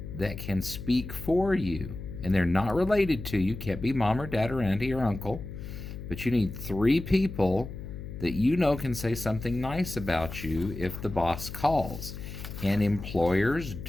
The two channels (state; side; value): noise; left; hum, 10 dB below the sound